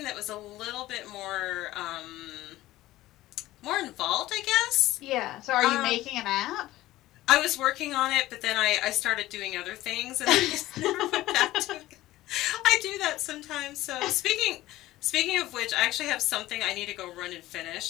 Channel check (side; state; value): right; quieter; 16.4 dB